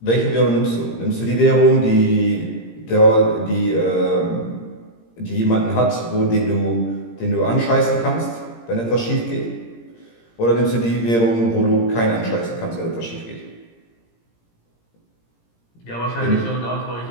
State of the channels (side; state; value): right; late; 17 ms